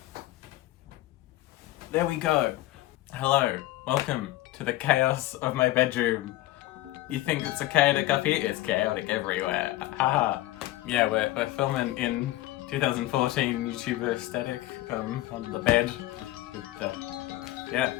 There we go. Hello. Welcome to the chaos of my bedroom. You think it's a chaotic up here? It's chaotic everywhere. Haha. Yeah, we're filming in 2014 YouTuber aesthetic on the bed. Yeah,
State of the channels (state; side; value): quieter; right; 16.3 dB